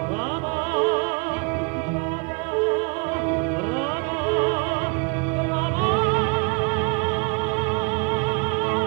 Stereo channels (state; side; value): quieter; left; 32.2 dB